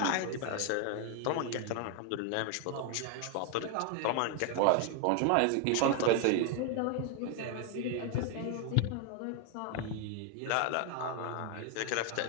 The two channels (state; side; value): different; both; correlation 0.01